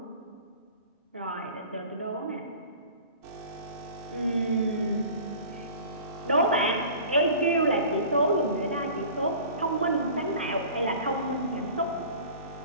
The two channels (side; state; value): both; inverted; correlation -0.42